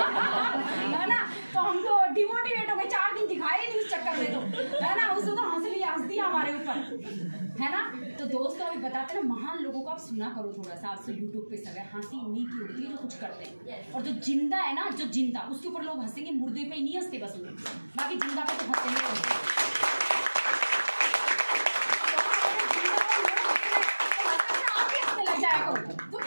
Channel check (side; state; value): both; inverted; correlation -1.00